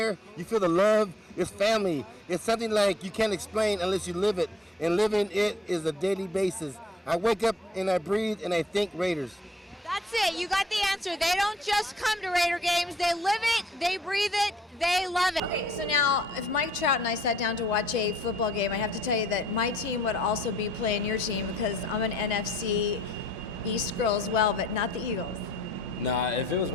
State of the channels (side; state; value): both; normal; correlation 0.61